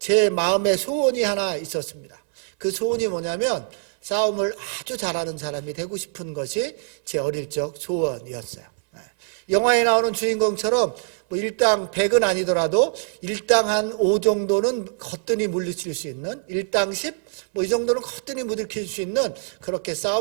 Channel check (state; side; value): silent; left; 63 dB below the other